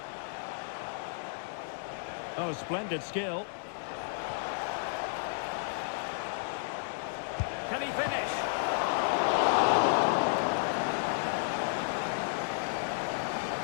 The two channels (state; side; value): silent; right; digital silence